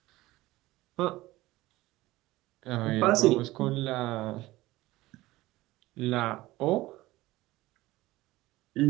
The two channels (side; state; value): left; quieter; 18.3 dB